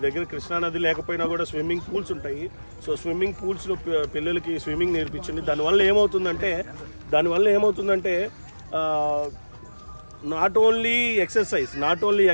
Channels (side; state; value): both; inverted; correlation -1.00